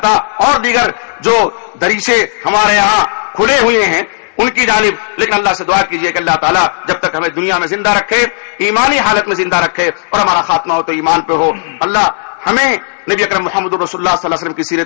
اور دیگر جو دریچے ہمارے یہاں کھلے ہوئے ہیں ان کی جانب. لیکن اللہ سے دعا کیجئے کہ اللہ تعالیٰ جب تک ہمیں دنیا میں زندہ رکھے، ایمانی حالت میں زندہ رکھے، اور ہمارا خاتمہ ہو تو ایمان پہ ہو. اللہ ہمیں نبی اکرم محمد رسول اللہ صلی اللہ علیہ وسلم کی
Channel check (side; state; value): right; silent; digital silence